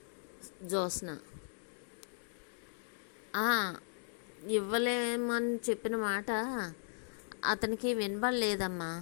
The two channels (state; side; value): silent; right; digital silence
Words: జ్యోత్స్న. ఇవ్వలేమని చెప్పిన మాట అతనికి వినబడలేదమ్మా.